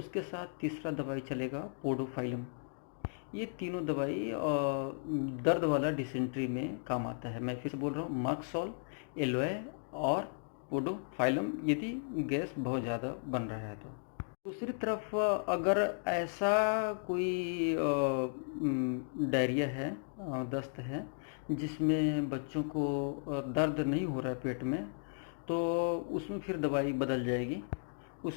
साथ तीसरा दवाई चलेगा पोडोफाइलम। ये तीनों दवाई दर्द वाला डिसेंट्री में काम आता है। मैं फिर से बोल रहा हूँ, मर्कसॉल, एलोए और पोडोफाइलम, यदि गैस बहुत ज़्यादा बन रहा है तो। दूसरी तरफ अगर ऐसा कोई डायरिया है, दस्त है, जिसमें बच्चों को दर्द नहीं हो रहा है पेट में, तो उसमें फिर दवाई बदल जाएगी।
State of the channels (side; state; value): right; silent; digital silence